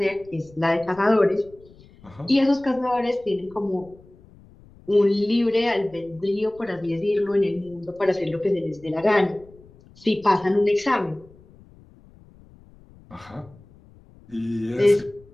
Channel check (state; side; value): noise; left; rumble, 25 dB below the sound